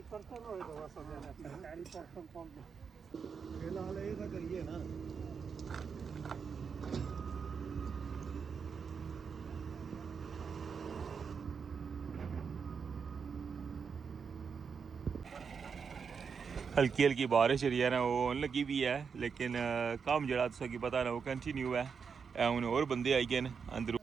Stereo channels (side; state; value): left; quieter; 6.1 dB